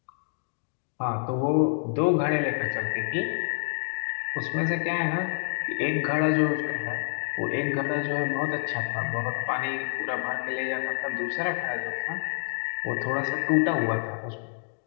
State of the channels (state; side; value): silent; right; digital silence